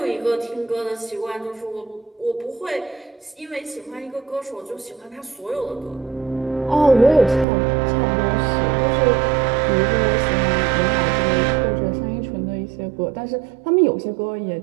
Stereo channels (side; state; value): left; drops out; at 7.5 s